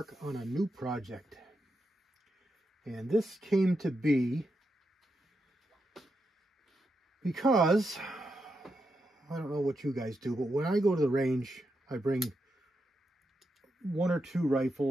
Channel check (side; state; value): both; normal; correlation 0.85